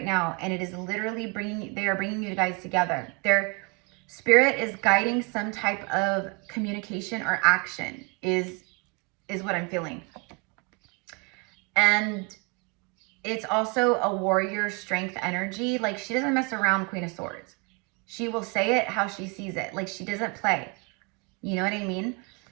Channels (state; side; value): quieter; left; 29.8 dB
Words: now, and it is literally they are bringing you guys together. Their spirit is guiding some type of communication or action is what I'm feeling. And it's also a warrior strength energy. Like, she doesn't mess around, Queen of Swords. She will say it how she sees it. Like, she doesn't play. You know what I mean?